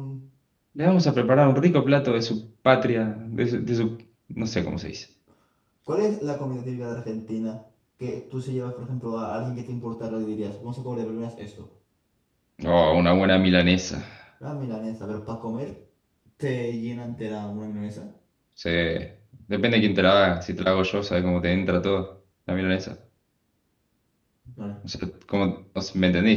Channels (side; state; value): both; identical; correlation 1.00